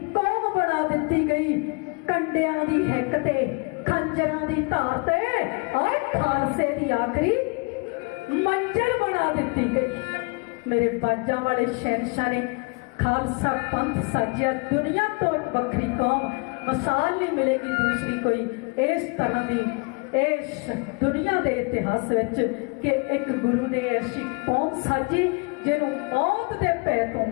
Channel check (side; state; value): right; quieter; 30.8 dB